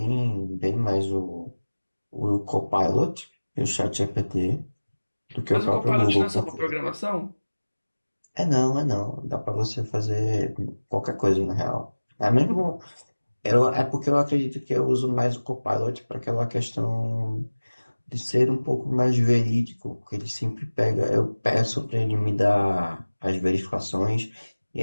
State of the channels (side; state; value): both; inverted; correlation -1.00